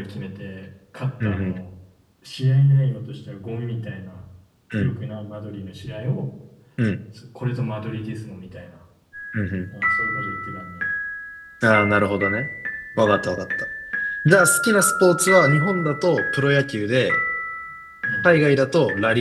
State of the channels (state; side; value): identical; both; correlation 1.00